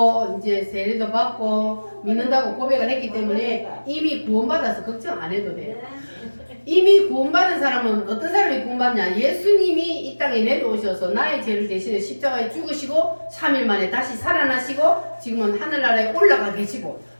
이제 세례도 받고 믿는다고 고백을 했기 때문에 이미 구원받아서 걱정 안 해도 돼요. 이미 구원받은 사람은 어떤 사람이 구원받냐? 예수님이 이 땅에 내려오셔서 나의 죄를 대신해 십자가에 죽으시고 3일 만에 다시 살아나시고 지금은 하늘나라에 올라가 계시고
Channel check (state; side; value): inverted; both; correlation -1.00